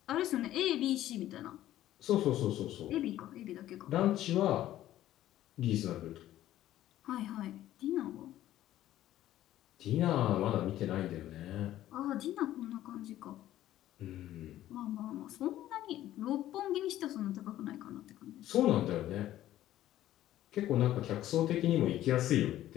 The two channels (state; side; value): quieter; right; 13.5 dB